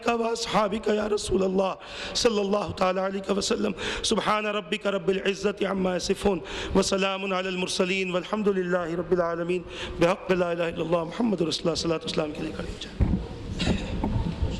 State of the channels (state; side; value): identical; both; correlation 1.00